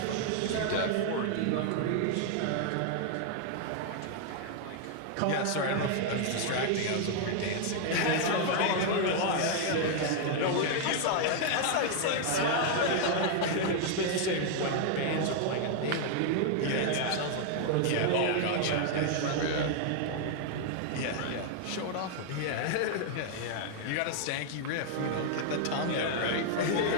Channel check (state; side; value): different; both; correlation 0.00